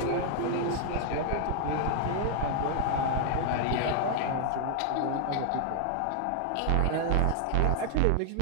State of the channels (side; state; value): both; different; correlation 0.00